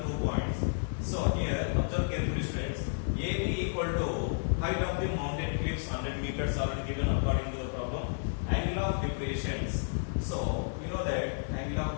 points. So here observe carefully friends. AB equal to height of the mountain cliffs 100 meters already given according to the problem. Angle of depressions. So we know that angle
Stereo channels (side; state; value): right; silent; digital silence